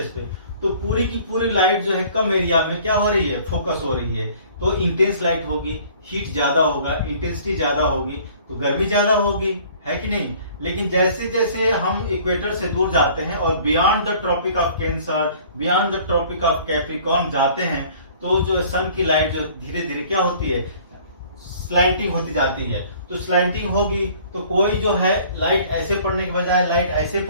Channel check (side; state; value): both; inverted; correlation -0.52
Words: पे, तो पूरी की पूरी लाइट जो है कम एरिया में क्या हो रही है, फोकस हो रही है, तो इंटेंस लाइट होगी, हीट ज्यादा होगा, इंटेंसिटी ज्यादा होगी, तो गर्मी ज्यादा होगी, है कि नहीं। लेकिन जैसे जैसे हम इक्वेटर से दूर जाते हैं और beyond the Tropic of Cancer, beyond the Tropic of Capricorn जाते हैं, तो जो सन की लाइट जो धीरे धीरे क्या होती है, स्लैंटिंग होती जाती है। तो स्लैंटिंग होगी तो कोई जो है लाइट ऐसे पड़ने के बजाय लाइट ऐसे